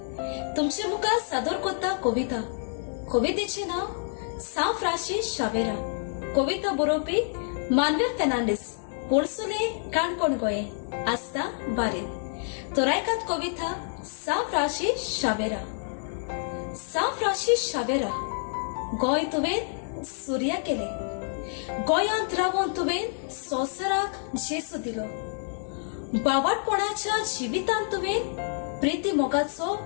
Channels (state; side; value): silent; right; digital silence